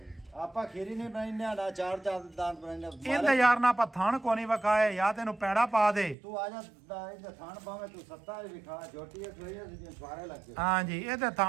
ਆਪਾਂ ਖੀਰੀ ਨਹੀਂ ਬਣਾਈਨੇ ਨਾ 4 ਦੰਦ ਬਣਾਈਨੇ। ਇਹਦੇ ਯਾਰ ਨਾ ਆਪਾਂ ਥਣ ਕੋ ਨਹੀਂ ਵਕਾਏ ਜਾਂ ਤੈਨੂੰ ਪੈੜਾ ਪਾ ਦੇ। ਤੂੰ ਆ ਜਾ ਇਹਦੇ ਥਾਣ ਪਾਵੇਂ ਤੂੰ 7 ਵਿਖਾ। ਜੋਟੀ ਇਹ ਸੋਈ ਸੀ ਸਾਰੇ ਲੱਗੇ। ਹਾਂਜੀ ਇਹਦੇ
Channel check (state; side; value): drops out; left; at 6.2 s